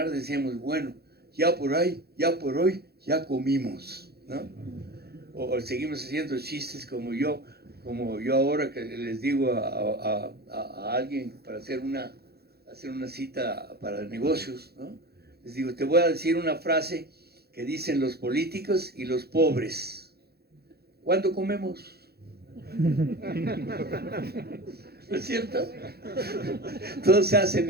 decíamos, bueno, ya por hoy ya comimos, ¿no? O seguimos haciendo chistes como yo ahora que les digo a alguien para hacer una cita para negocios, ¿no? Les digo, te voy a decir una frase que dicen los políticos y los pobres. ¿Cuándo comemos? ¿No es cierto? Todos se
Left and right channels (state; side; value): late; left; 0.46 ms